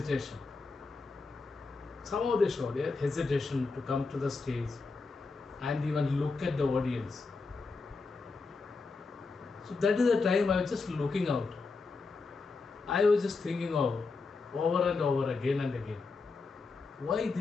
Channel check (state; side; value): quieter; right; 4.1 dB